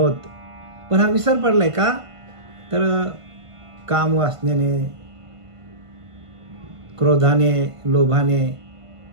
पण हा विसर पडलाय का तर काम वासनेने, क्रोधाने, लोभाने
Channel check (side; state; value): left; late; 1.5 ms